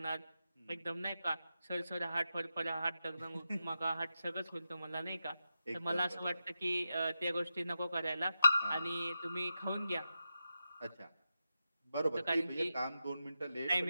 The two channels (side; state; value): both; inverted; correlation -0.89